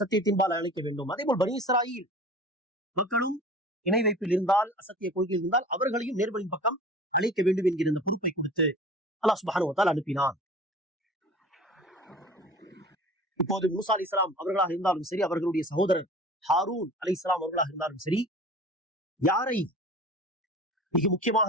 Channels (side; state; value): both; normal; correlation 0.41